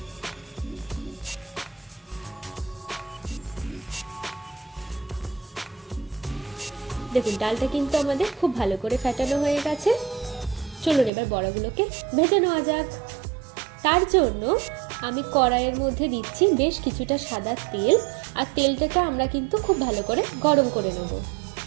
দেখুন ডালটা কিন্তু আমাদের খুব ভালো করে ফেটানো হয়ে গেছে। চলুন এবার বড়াগুলোকে ভেজে নেওয়া যাক। তার জন্য আমি কড়াইয়ের মধ্যে দিচ্ছি বেশ কিছুটা সাদা তেল, আর তেলটাকে আমরা কিন্তু খুব ভালো করে গরম করে নেব।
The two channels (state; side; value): drops out; left; at 11.1 s